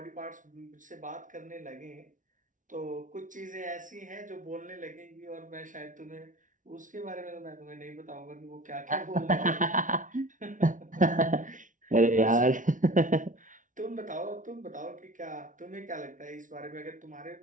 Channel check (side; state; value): left; late; 0.38 ms